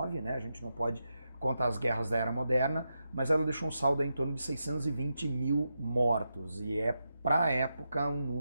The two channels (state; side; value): inverted; both; correlation -0.87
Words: né? A gente não pode contar as guerras da Era Moderna, mas ela deixou um saldo em torno de 620 mil mortos, e para a época um